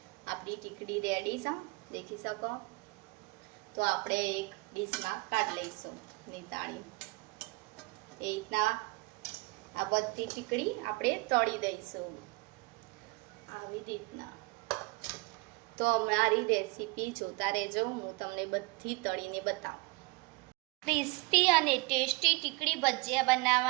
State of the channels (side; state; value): left; quieter; 26.1 dB